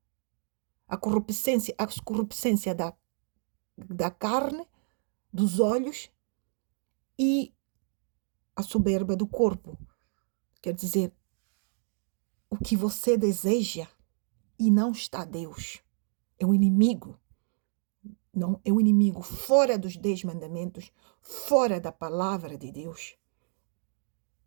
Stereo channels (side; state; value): left; silent; 55 dB below the other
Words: a corruptência da carne, dos olhos e a soberba do corpo. Quer dizer, o que você deseja e não está Deus. É o inimigo. Não, é o inimigo fora dos 10 mandamentos, fora da palavra de Deus.